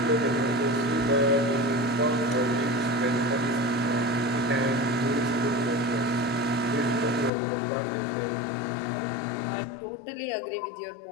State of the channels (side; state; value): right; drops out; at 7.3 s